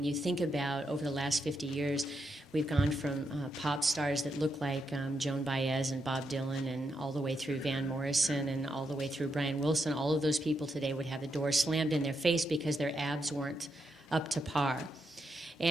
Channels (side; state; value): both; normal; correlation 0.82